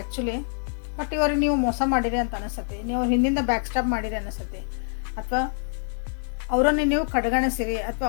ಬಟ್ ಇವ್ರಿಗೆ ನೀವು ಮೋಸ ಮಾಡಿರಿ ಅಂತ ಅನಿಸುತ್ತೆ, ನೀವು ಹಿಂದಿಂದ ಬ್ಯಾಕ್ ಸ್ಟಾಪ್ ಮಾಡಿರಿ ಅನಿಸುತ್ತೆ, ಅಥವಾ ಅವರನ್ನು ನೀವು ಕಡೆಗಣಿಸಿರಿ, ಅಥವಾ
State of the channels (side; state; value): right; silent; 61 dB below the other